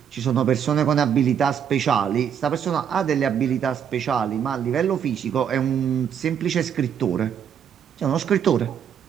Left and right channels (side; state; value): left; quieter; 8.3 dB